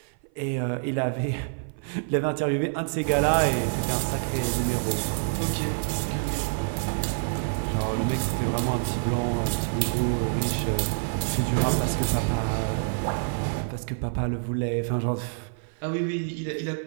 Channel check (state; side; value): silent; left; 56 dB below the other